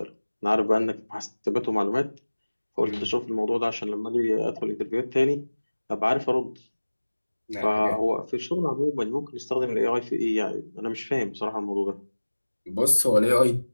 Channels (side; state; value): both; inverted; correlation -1.00